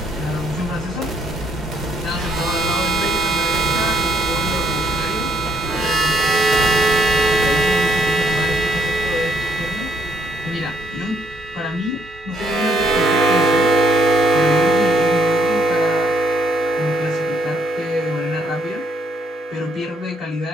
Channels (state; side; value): normal; both; correlation 0.71